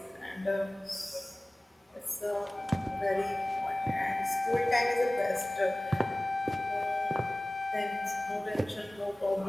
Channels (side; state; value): both; normal; correlation 0.98